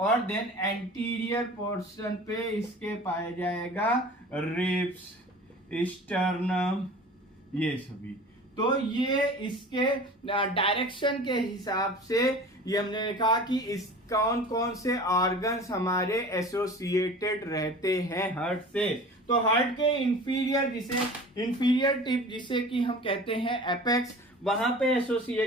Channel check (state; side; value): normal; both; correlation 0.40